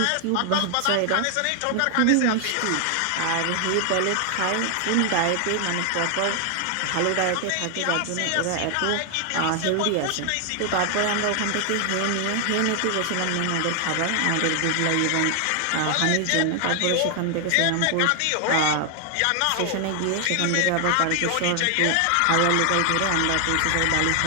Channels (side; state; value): both; different; correlation 0.00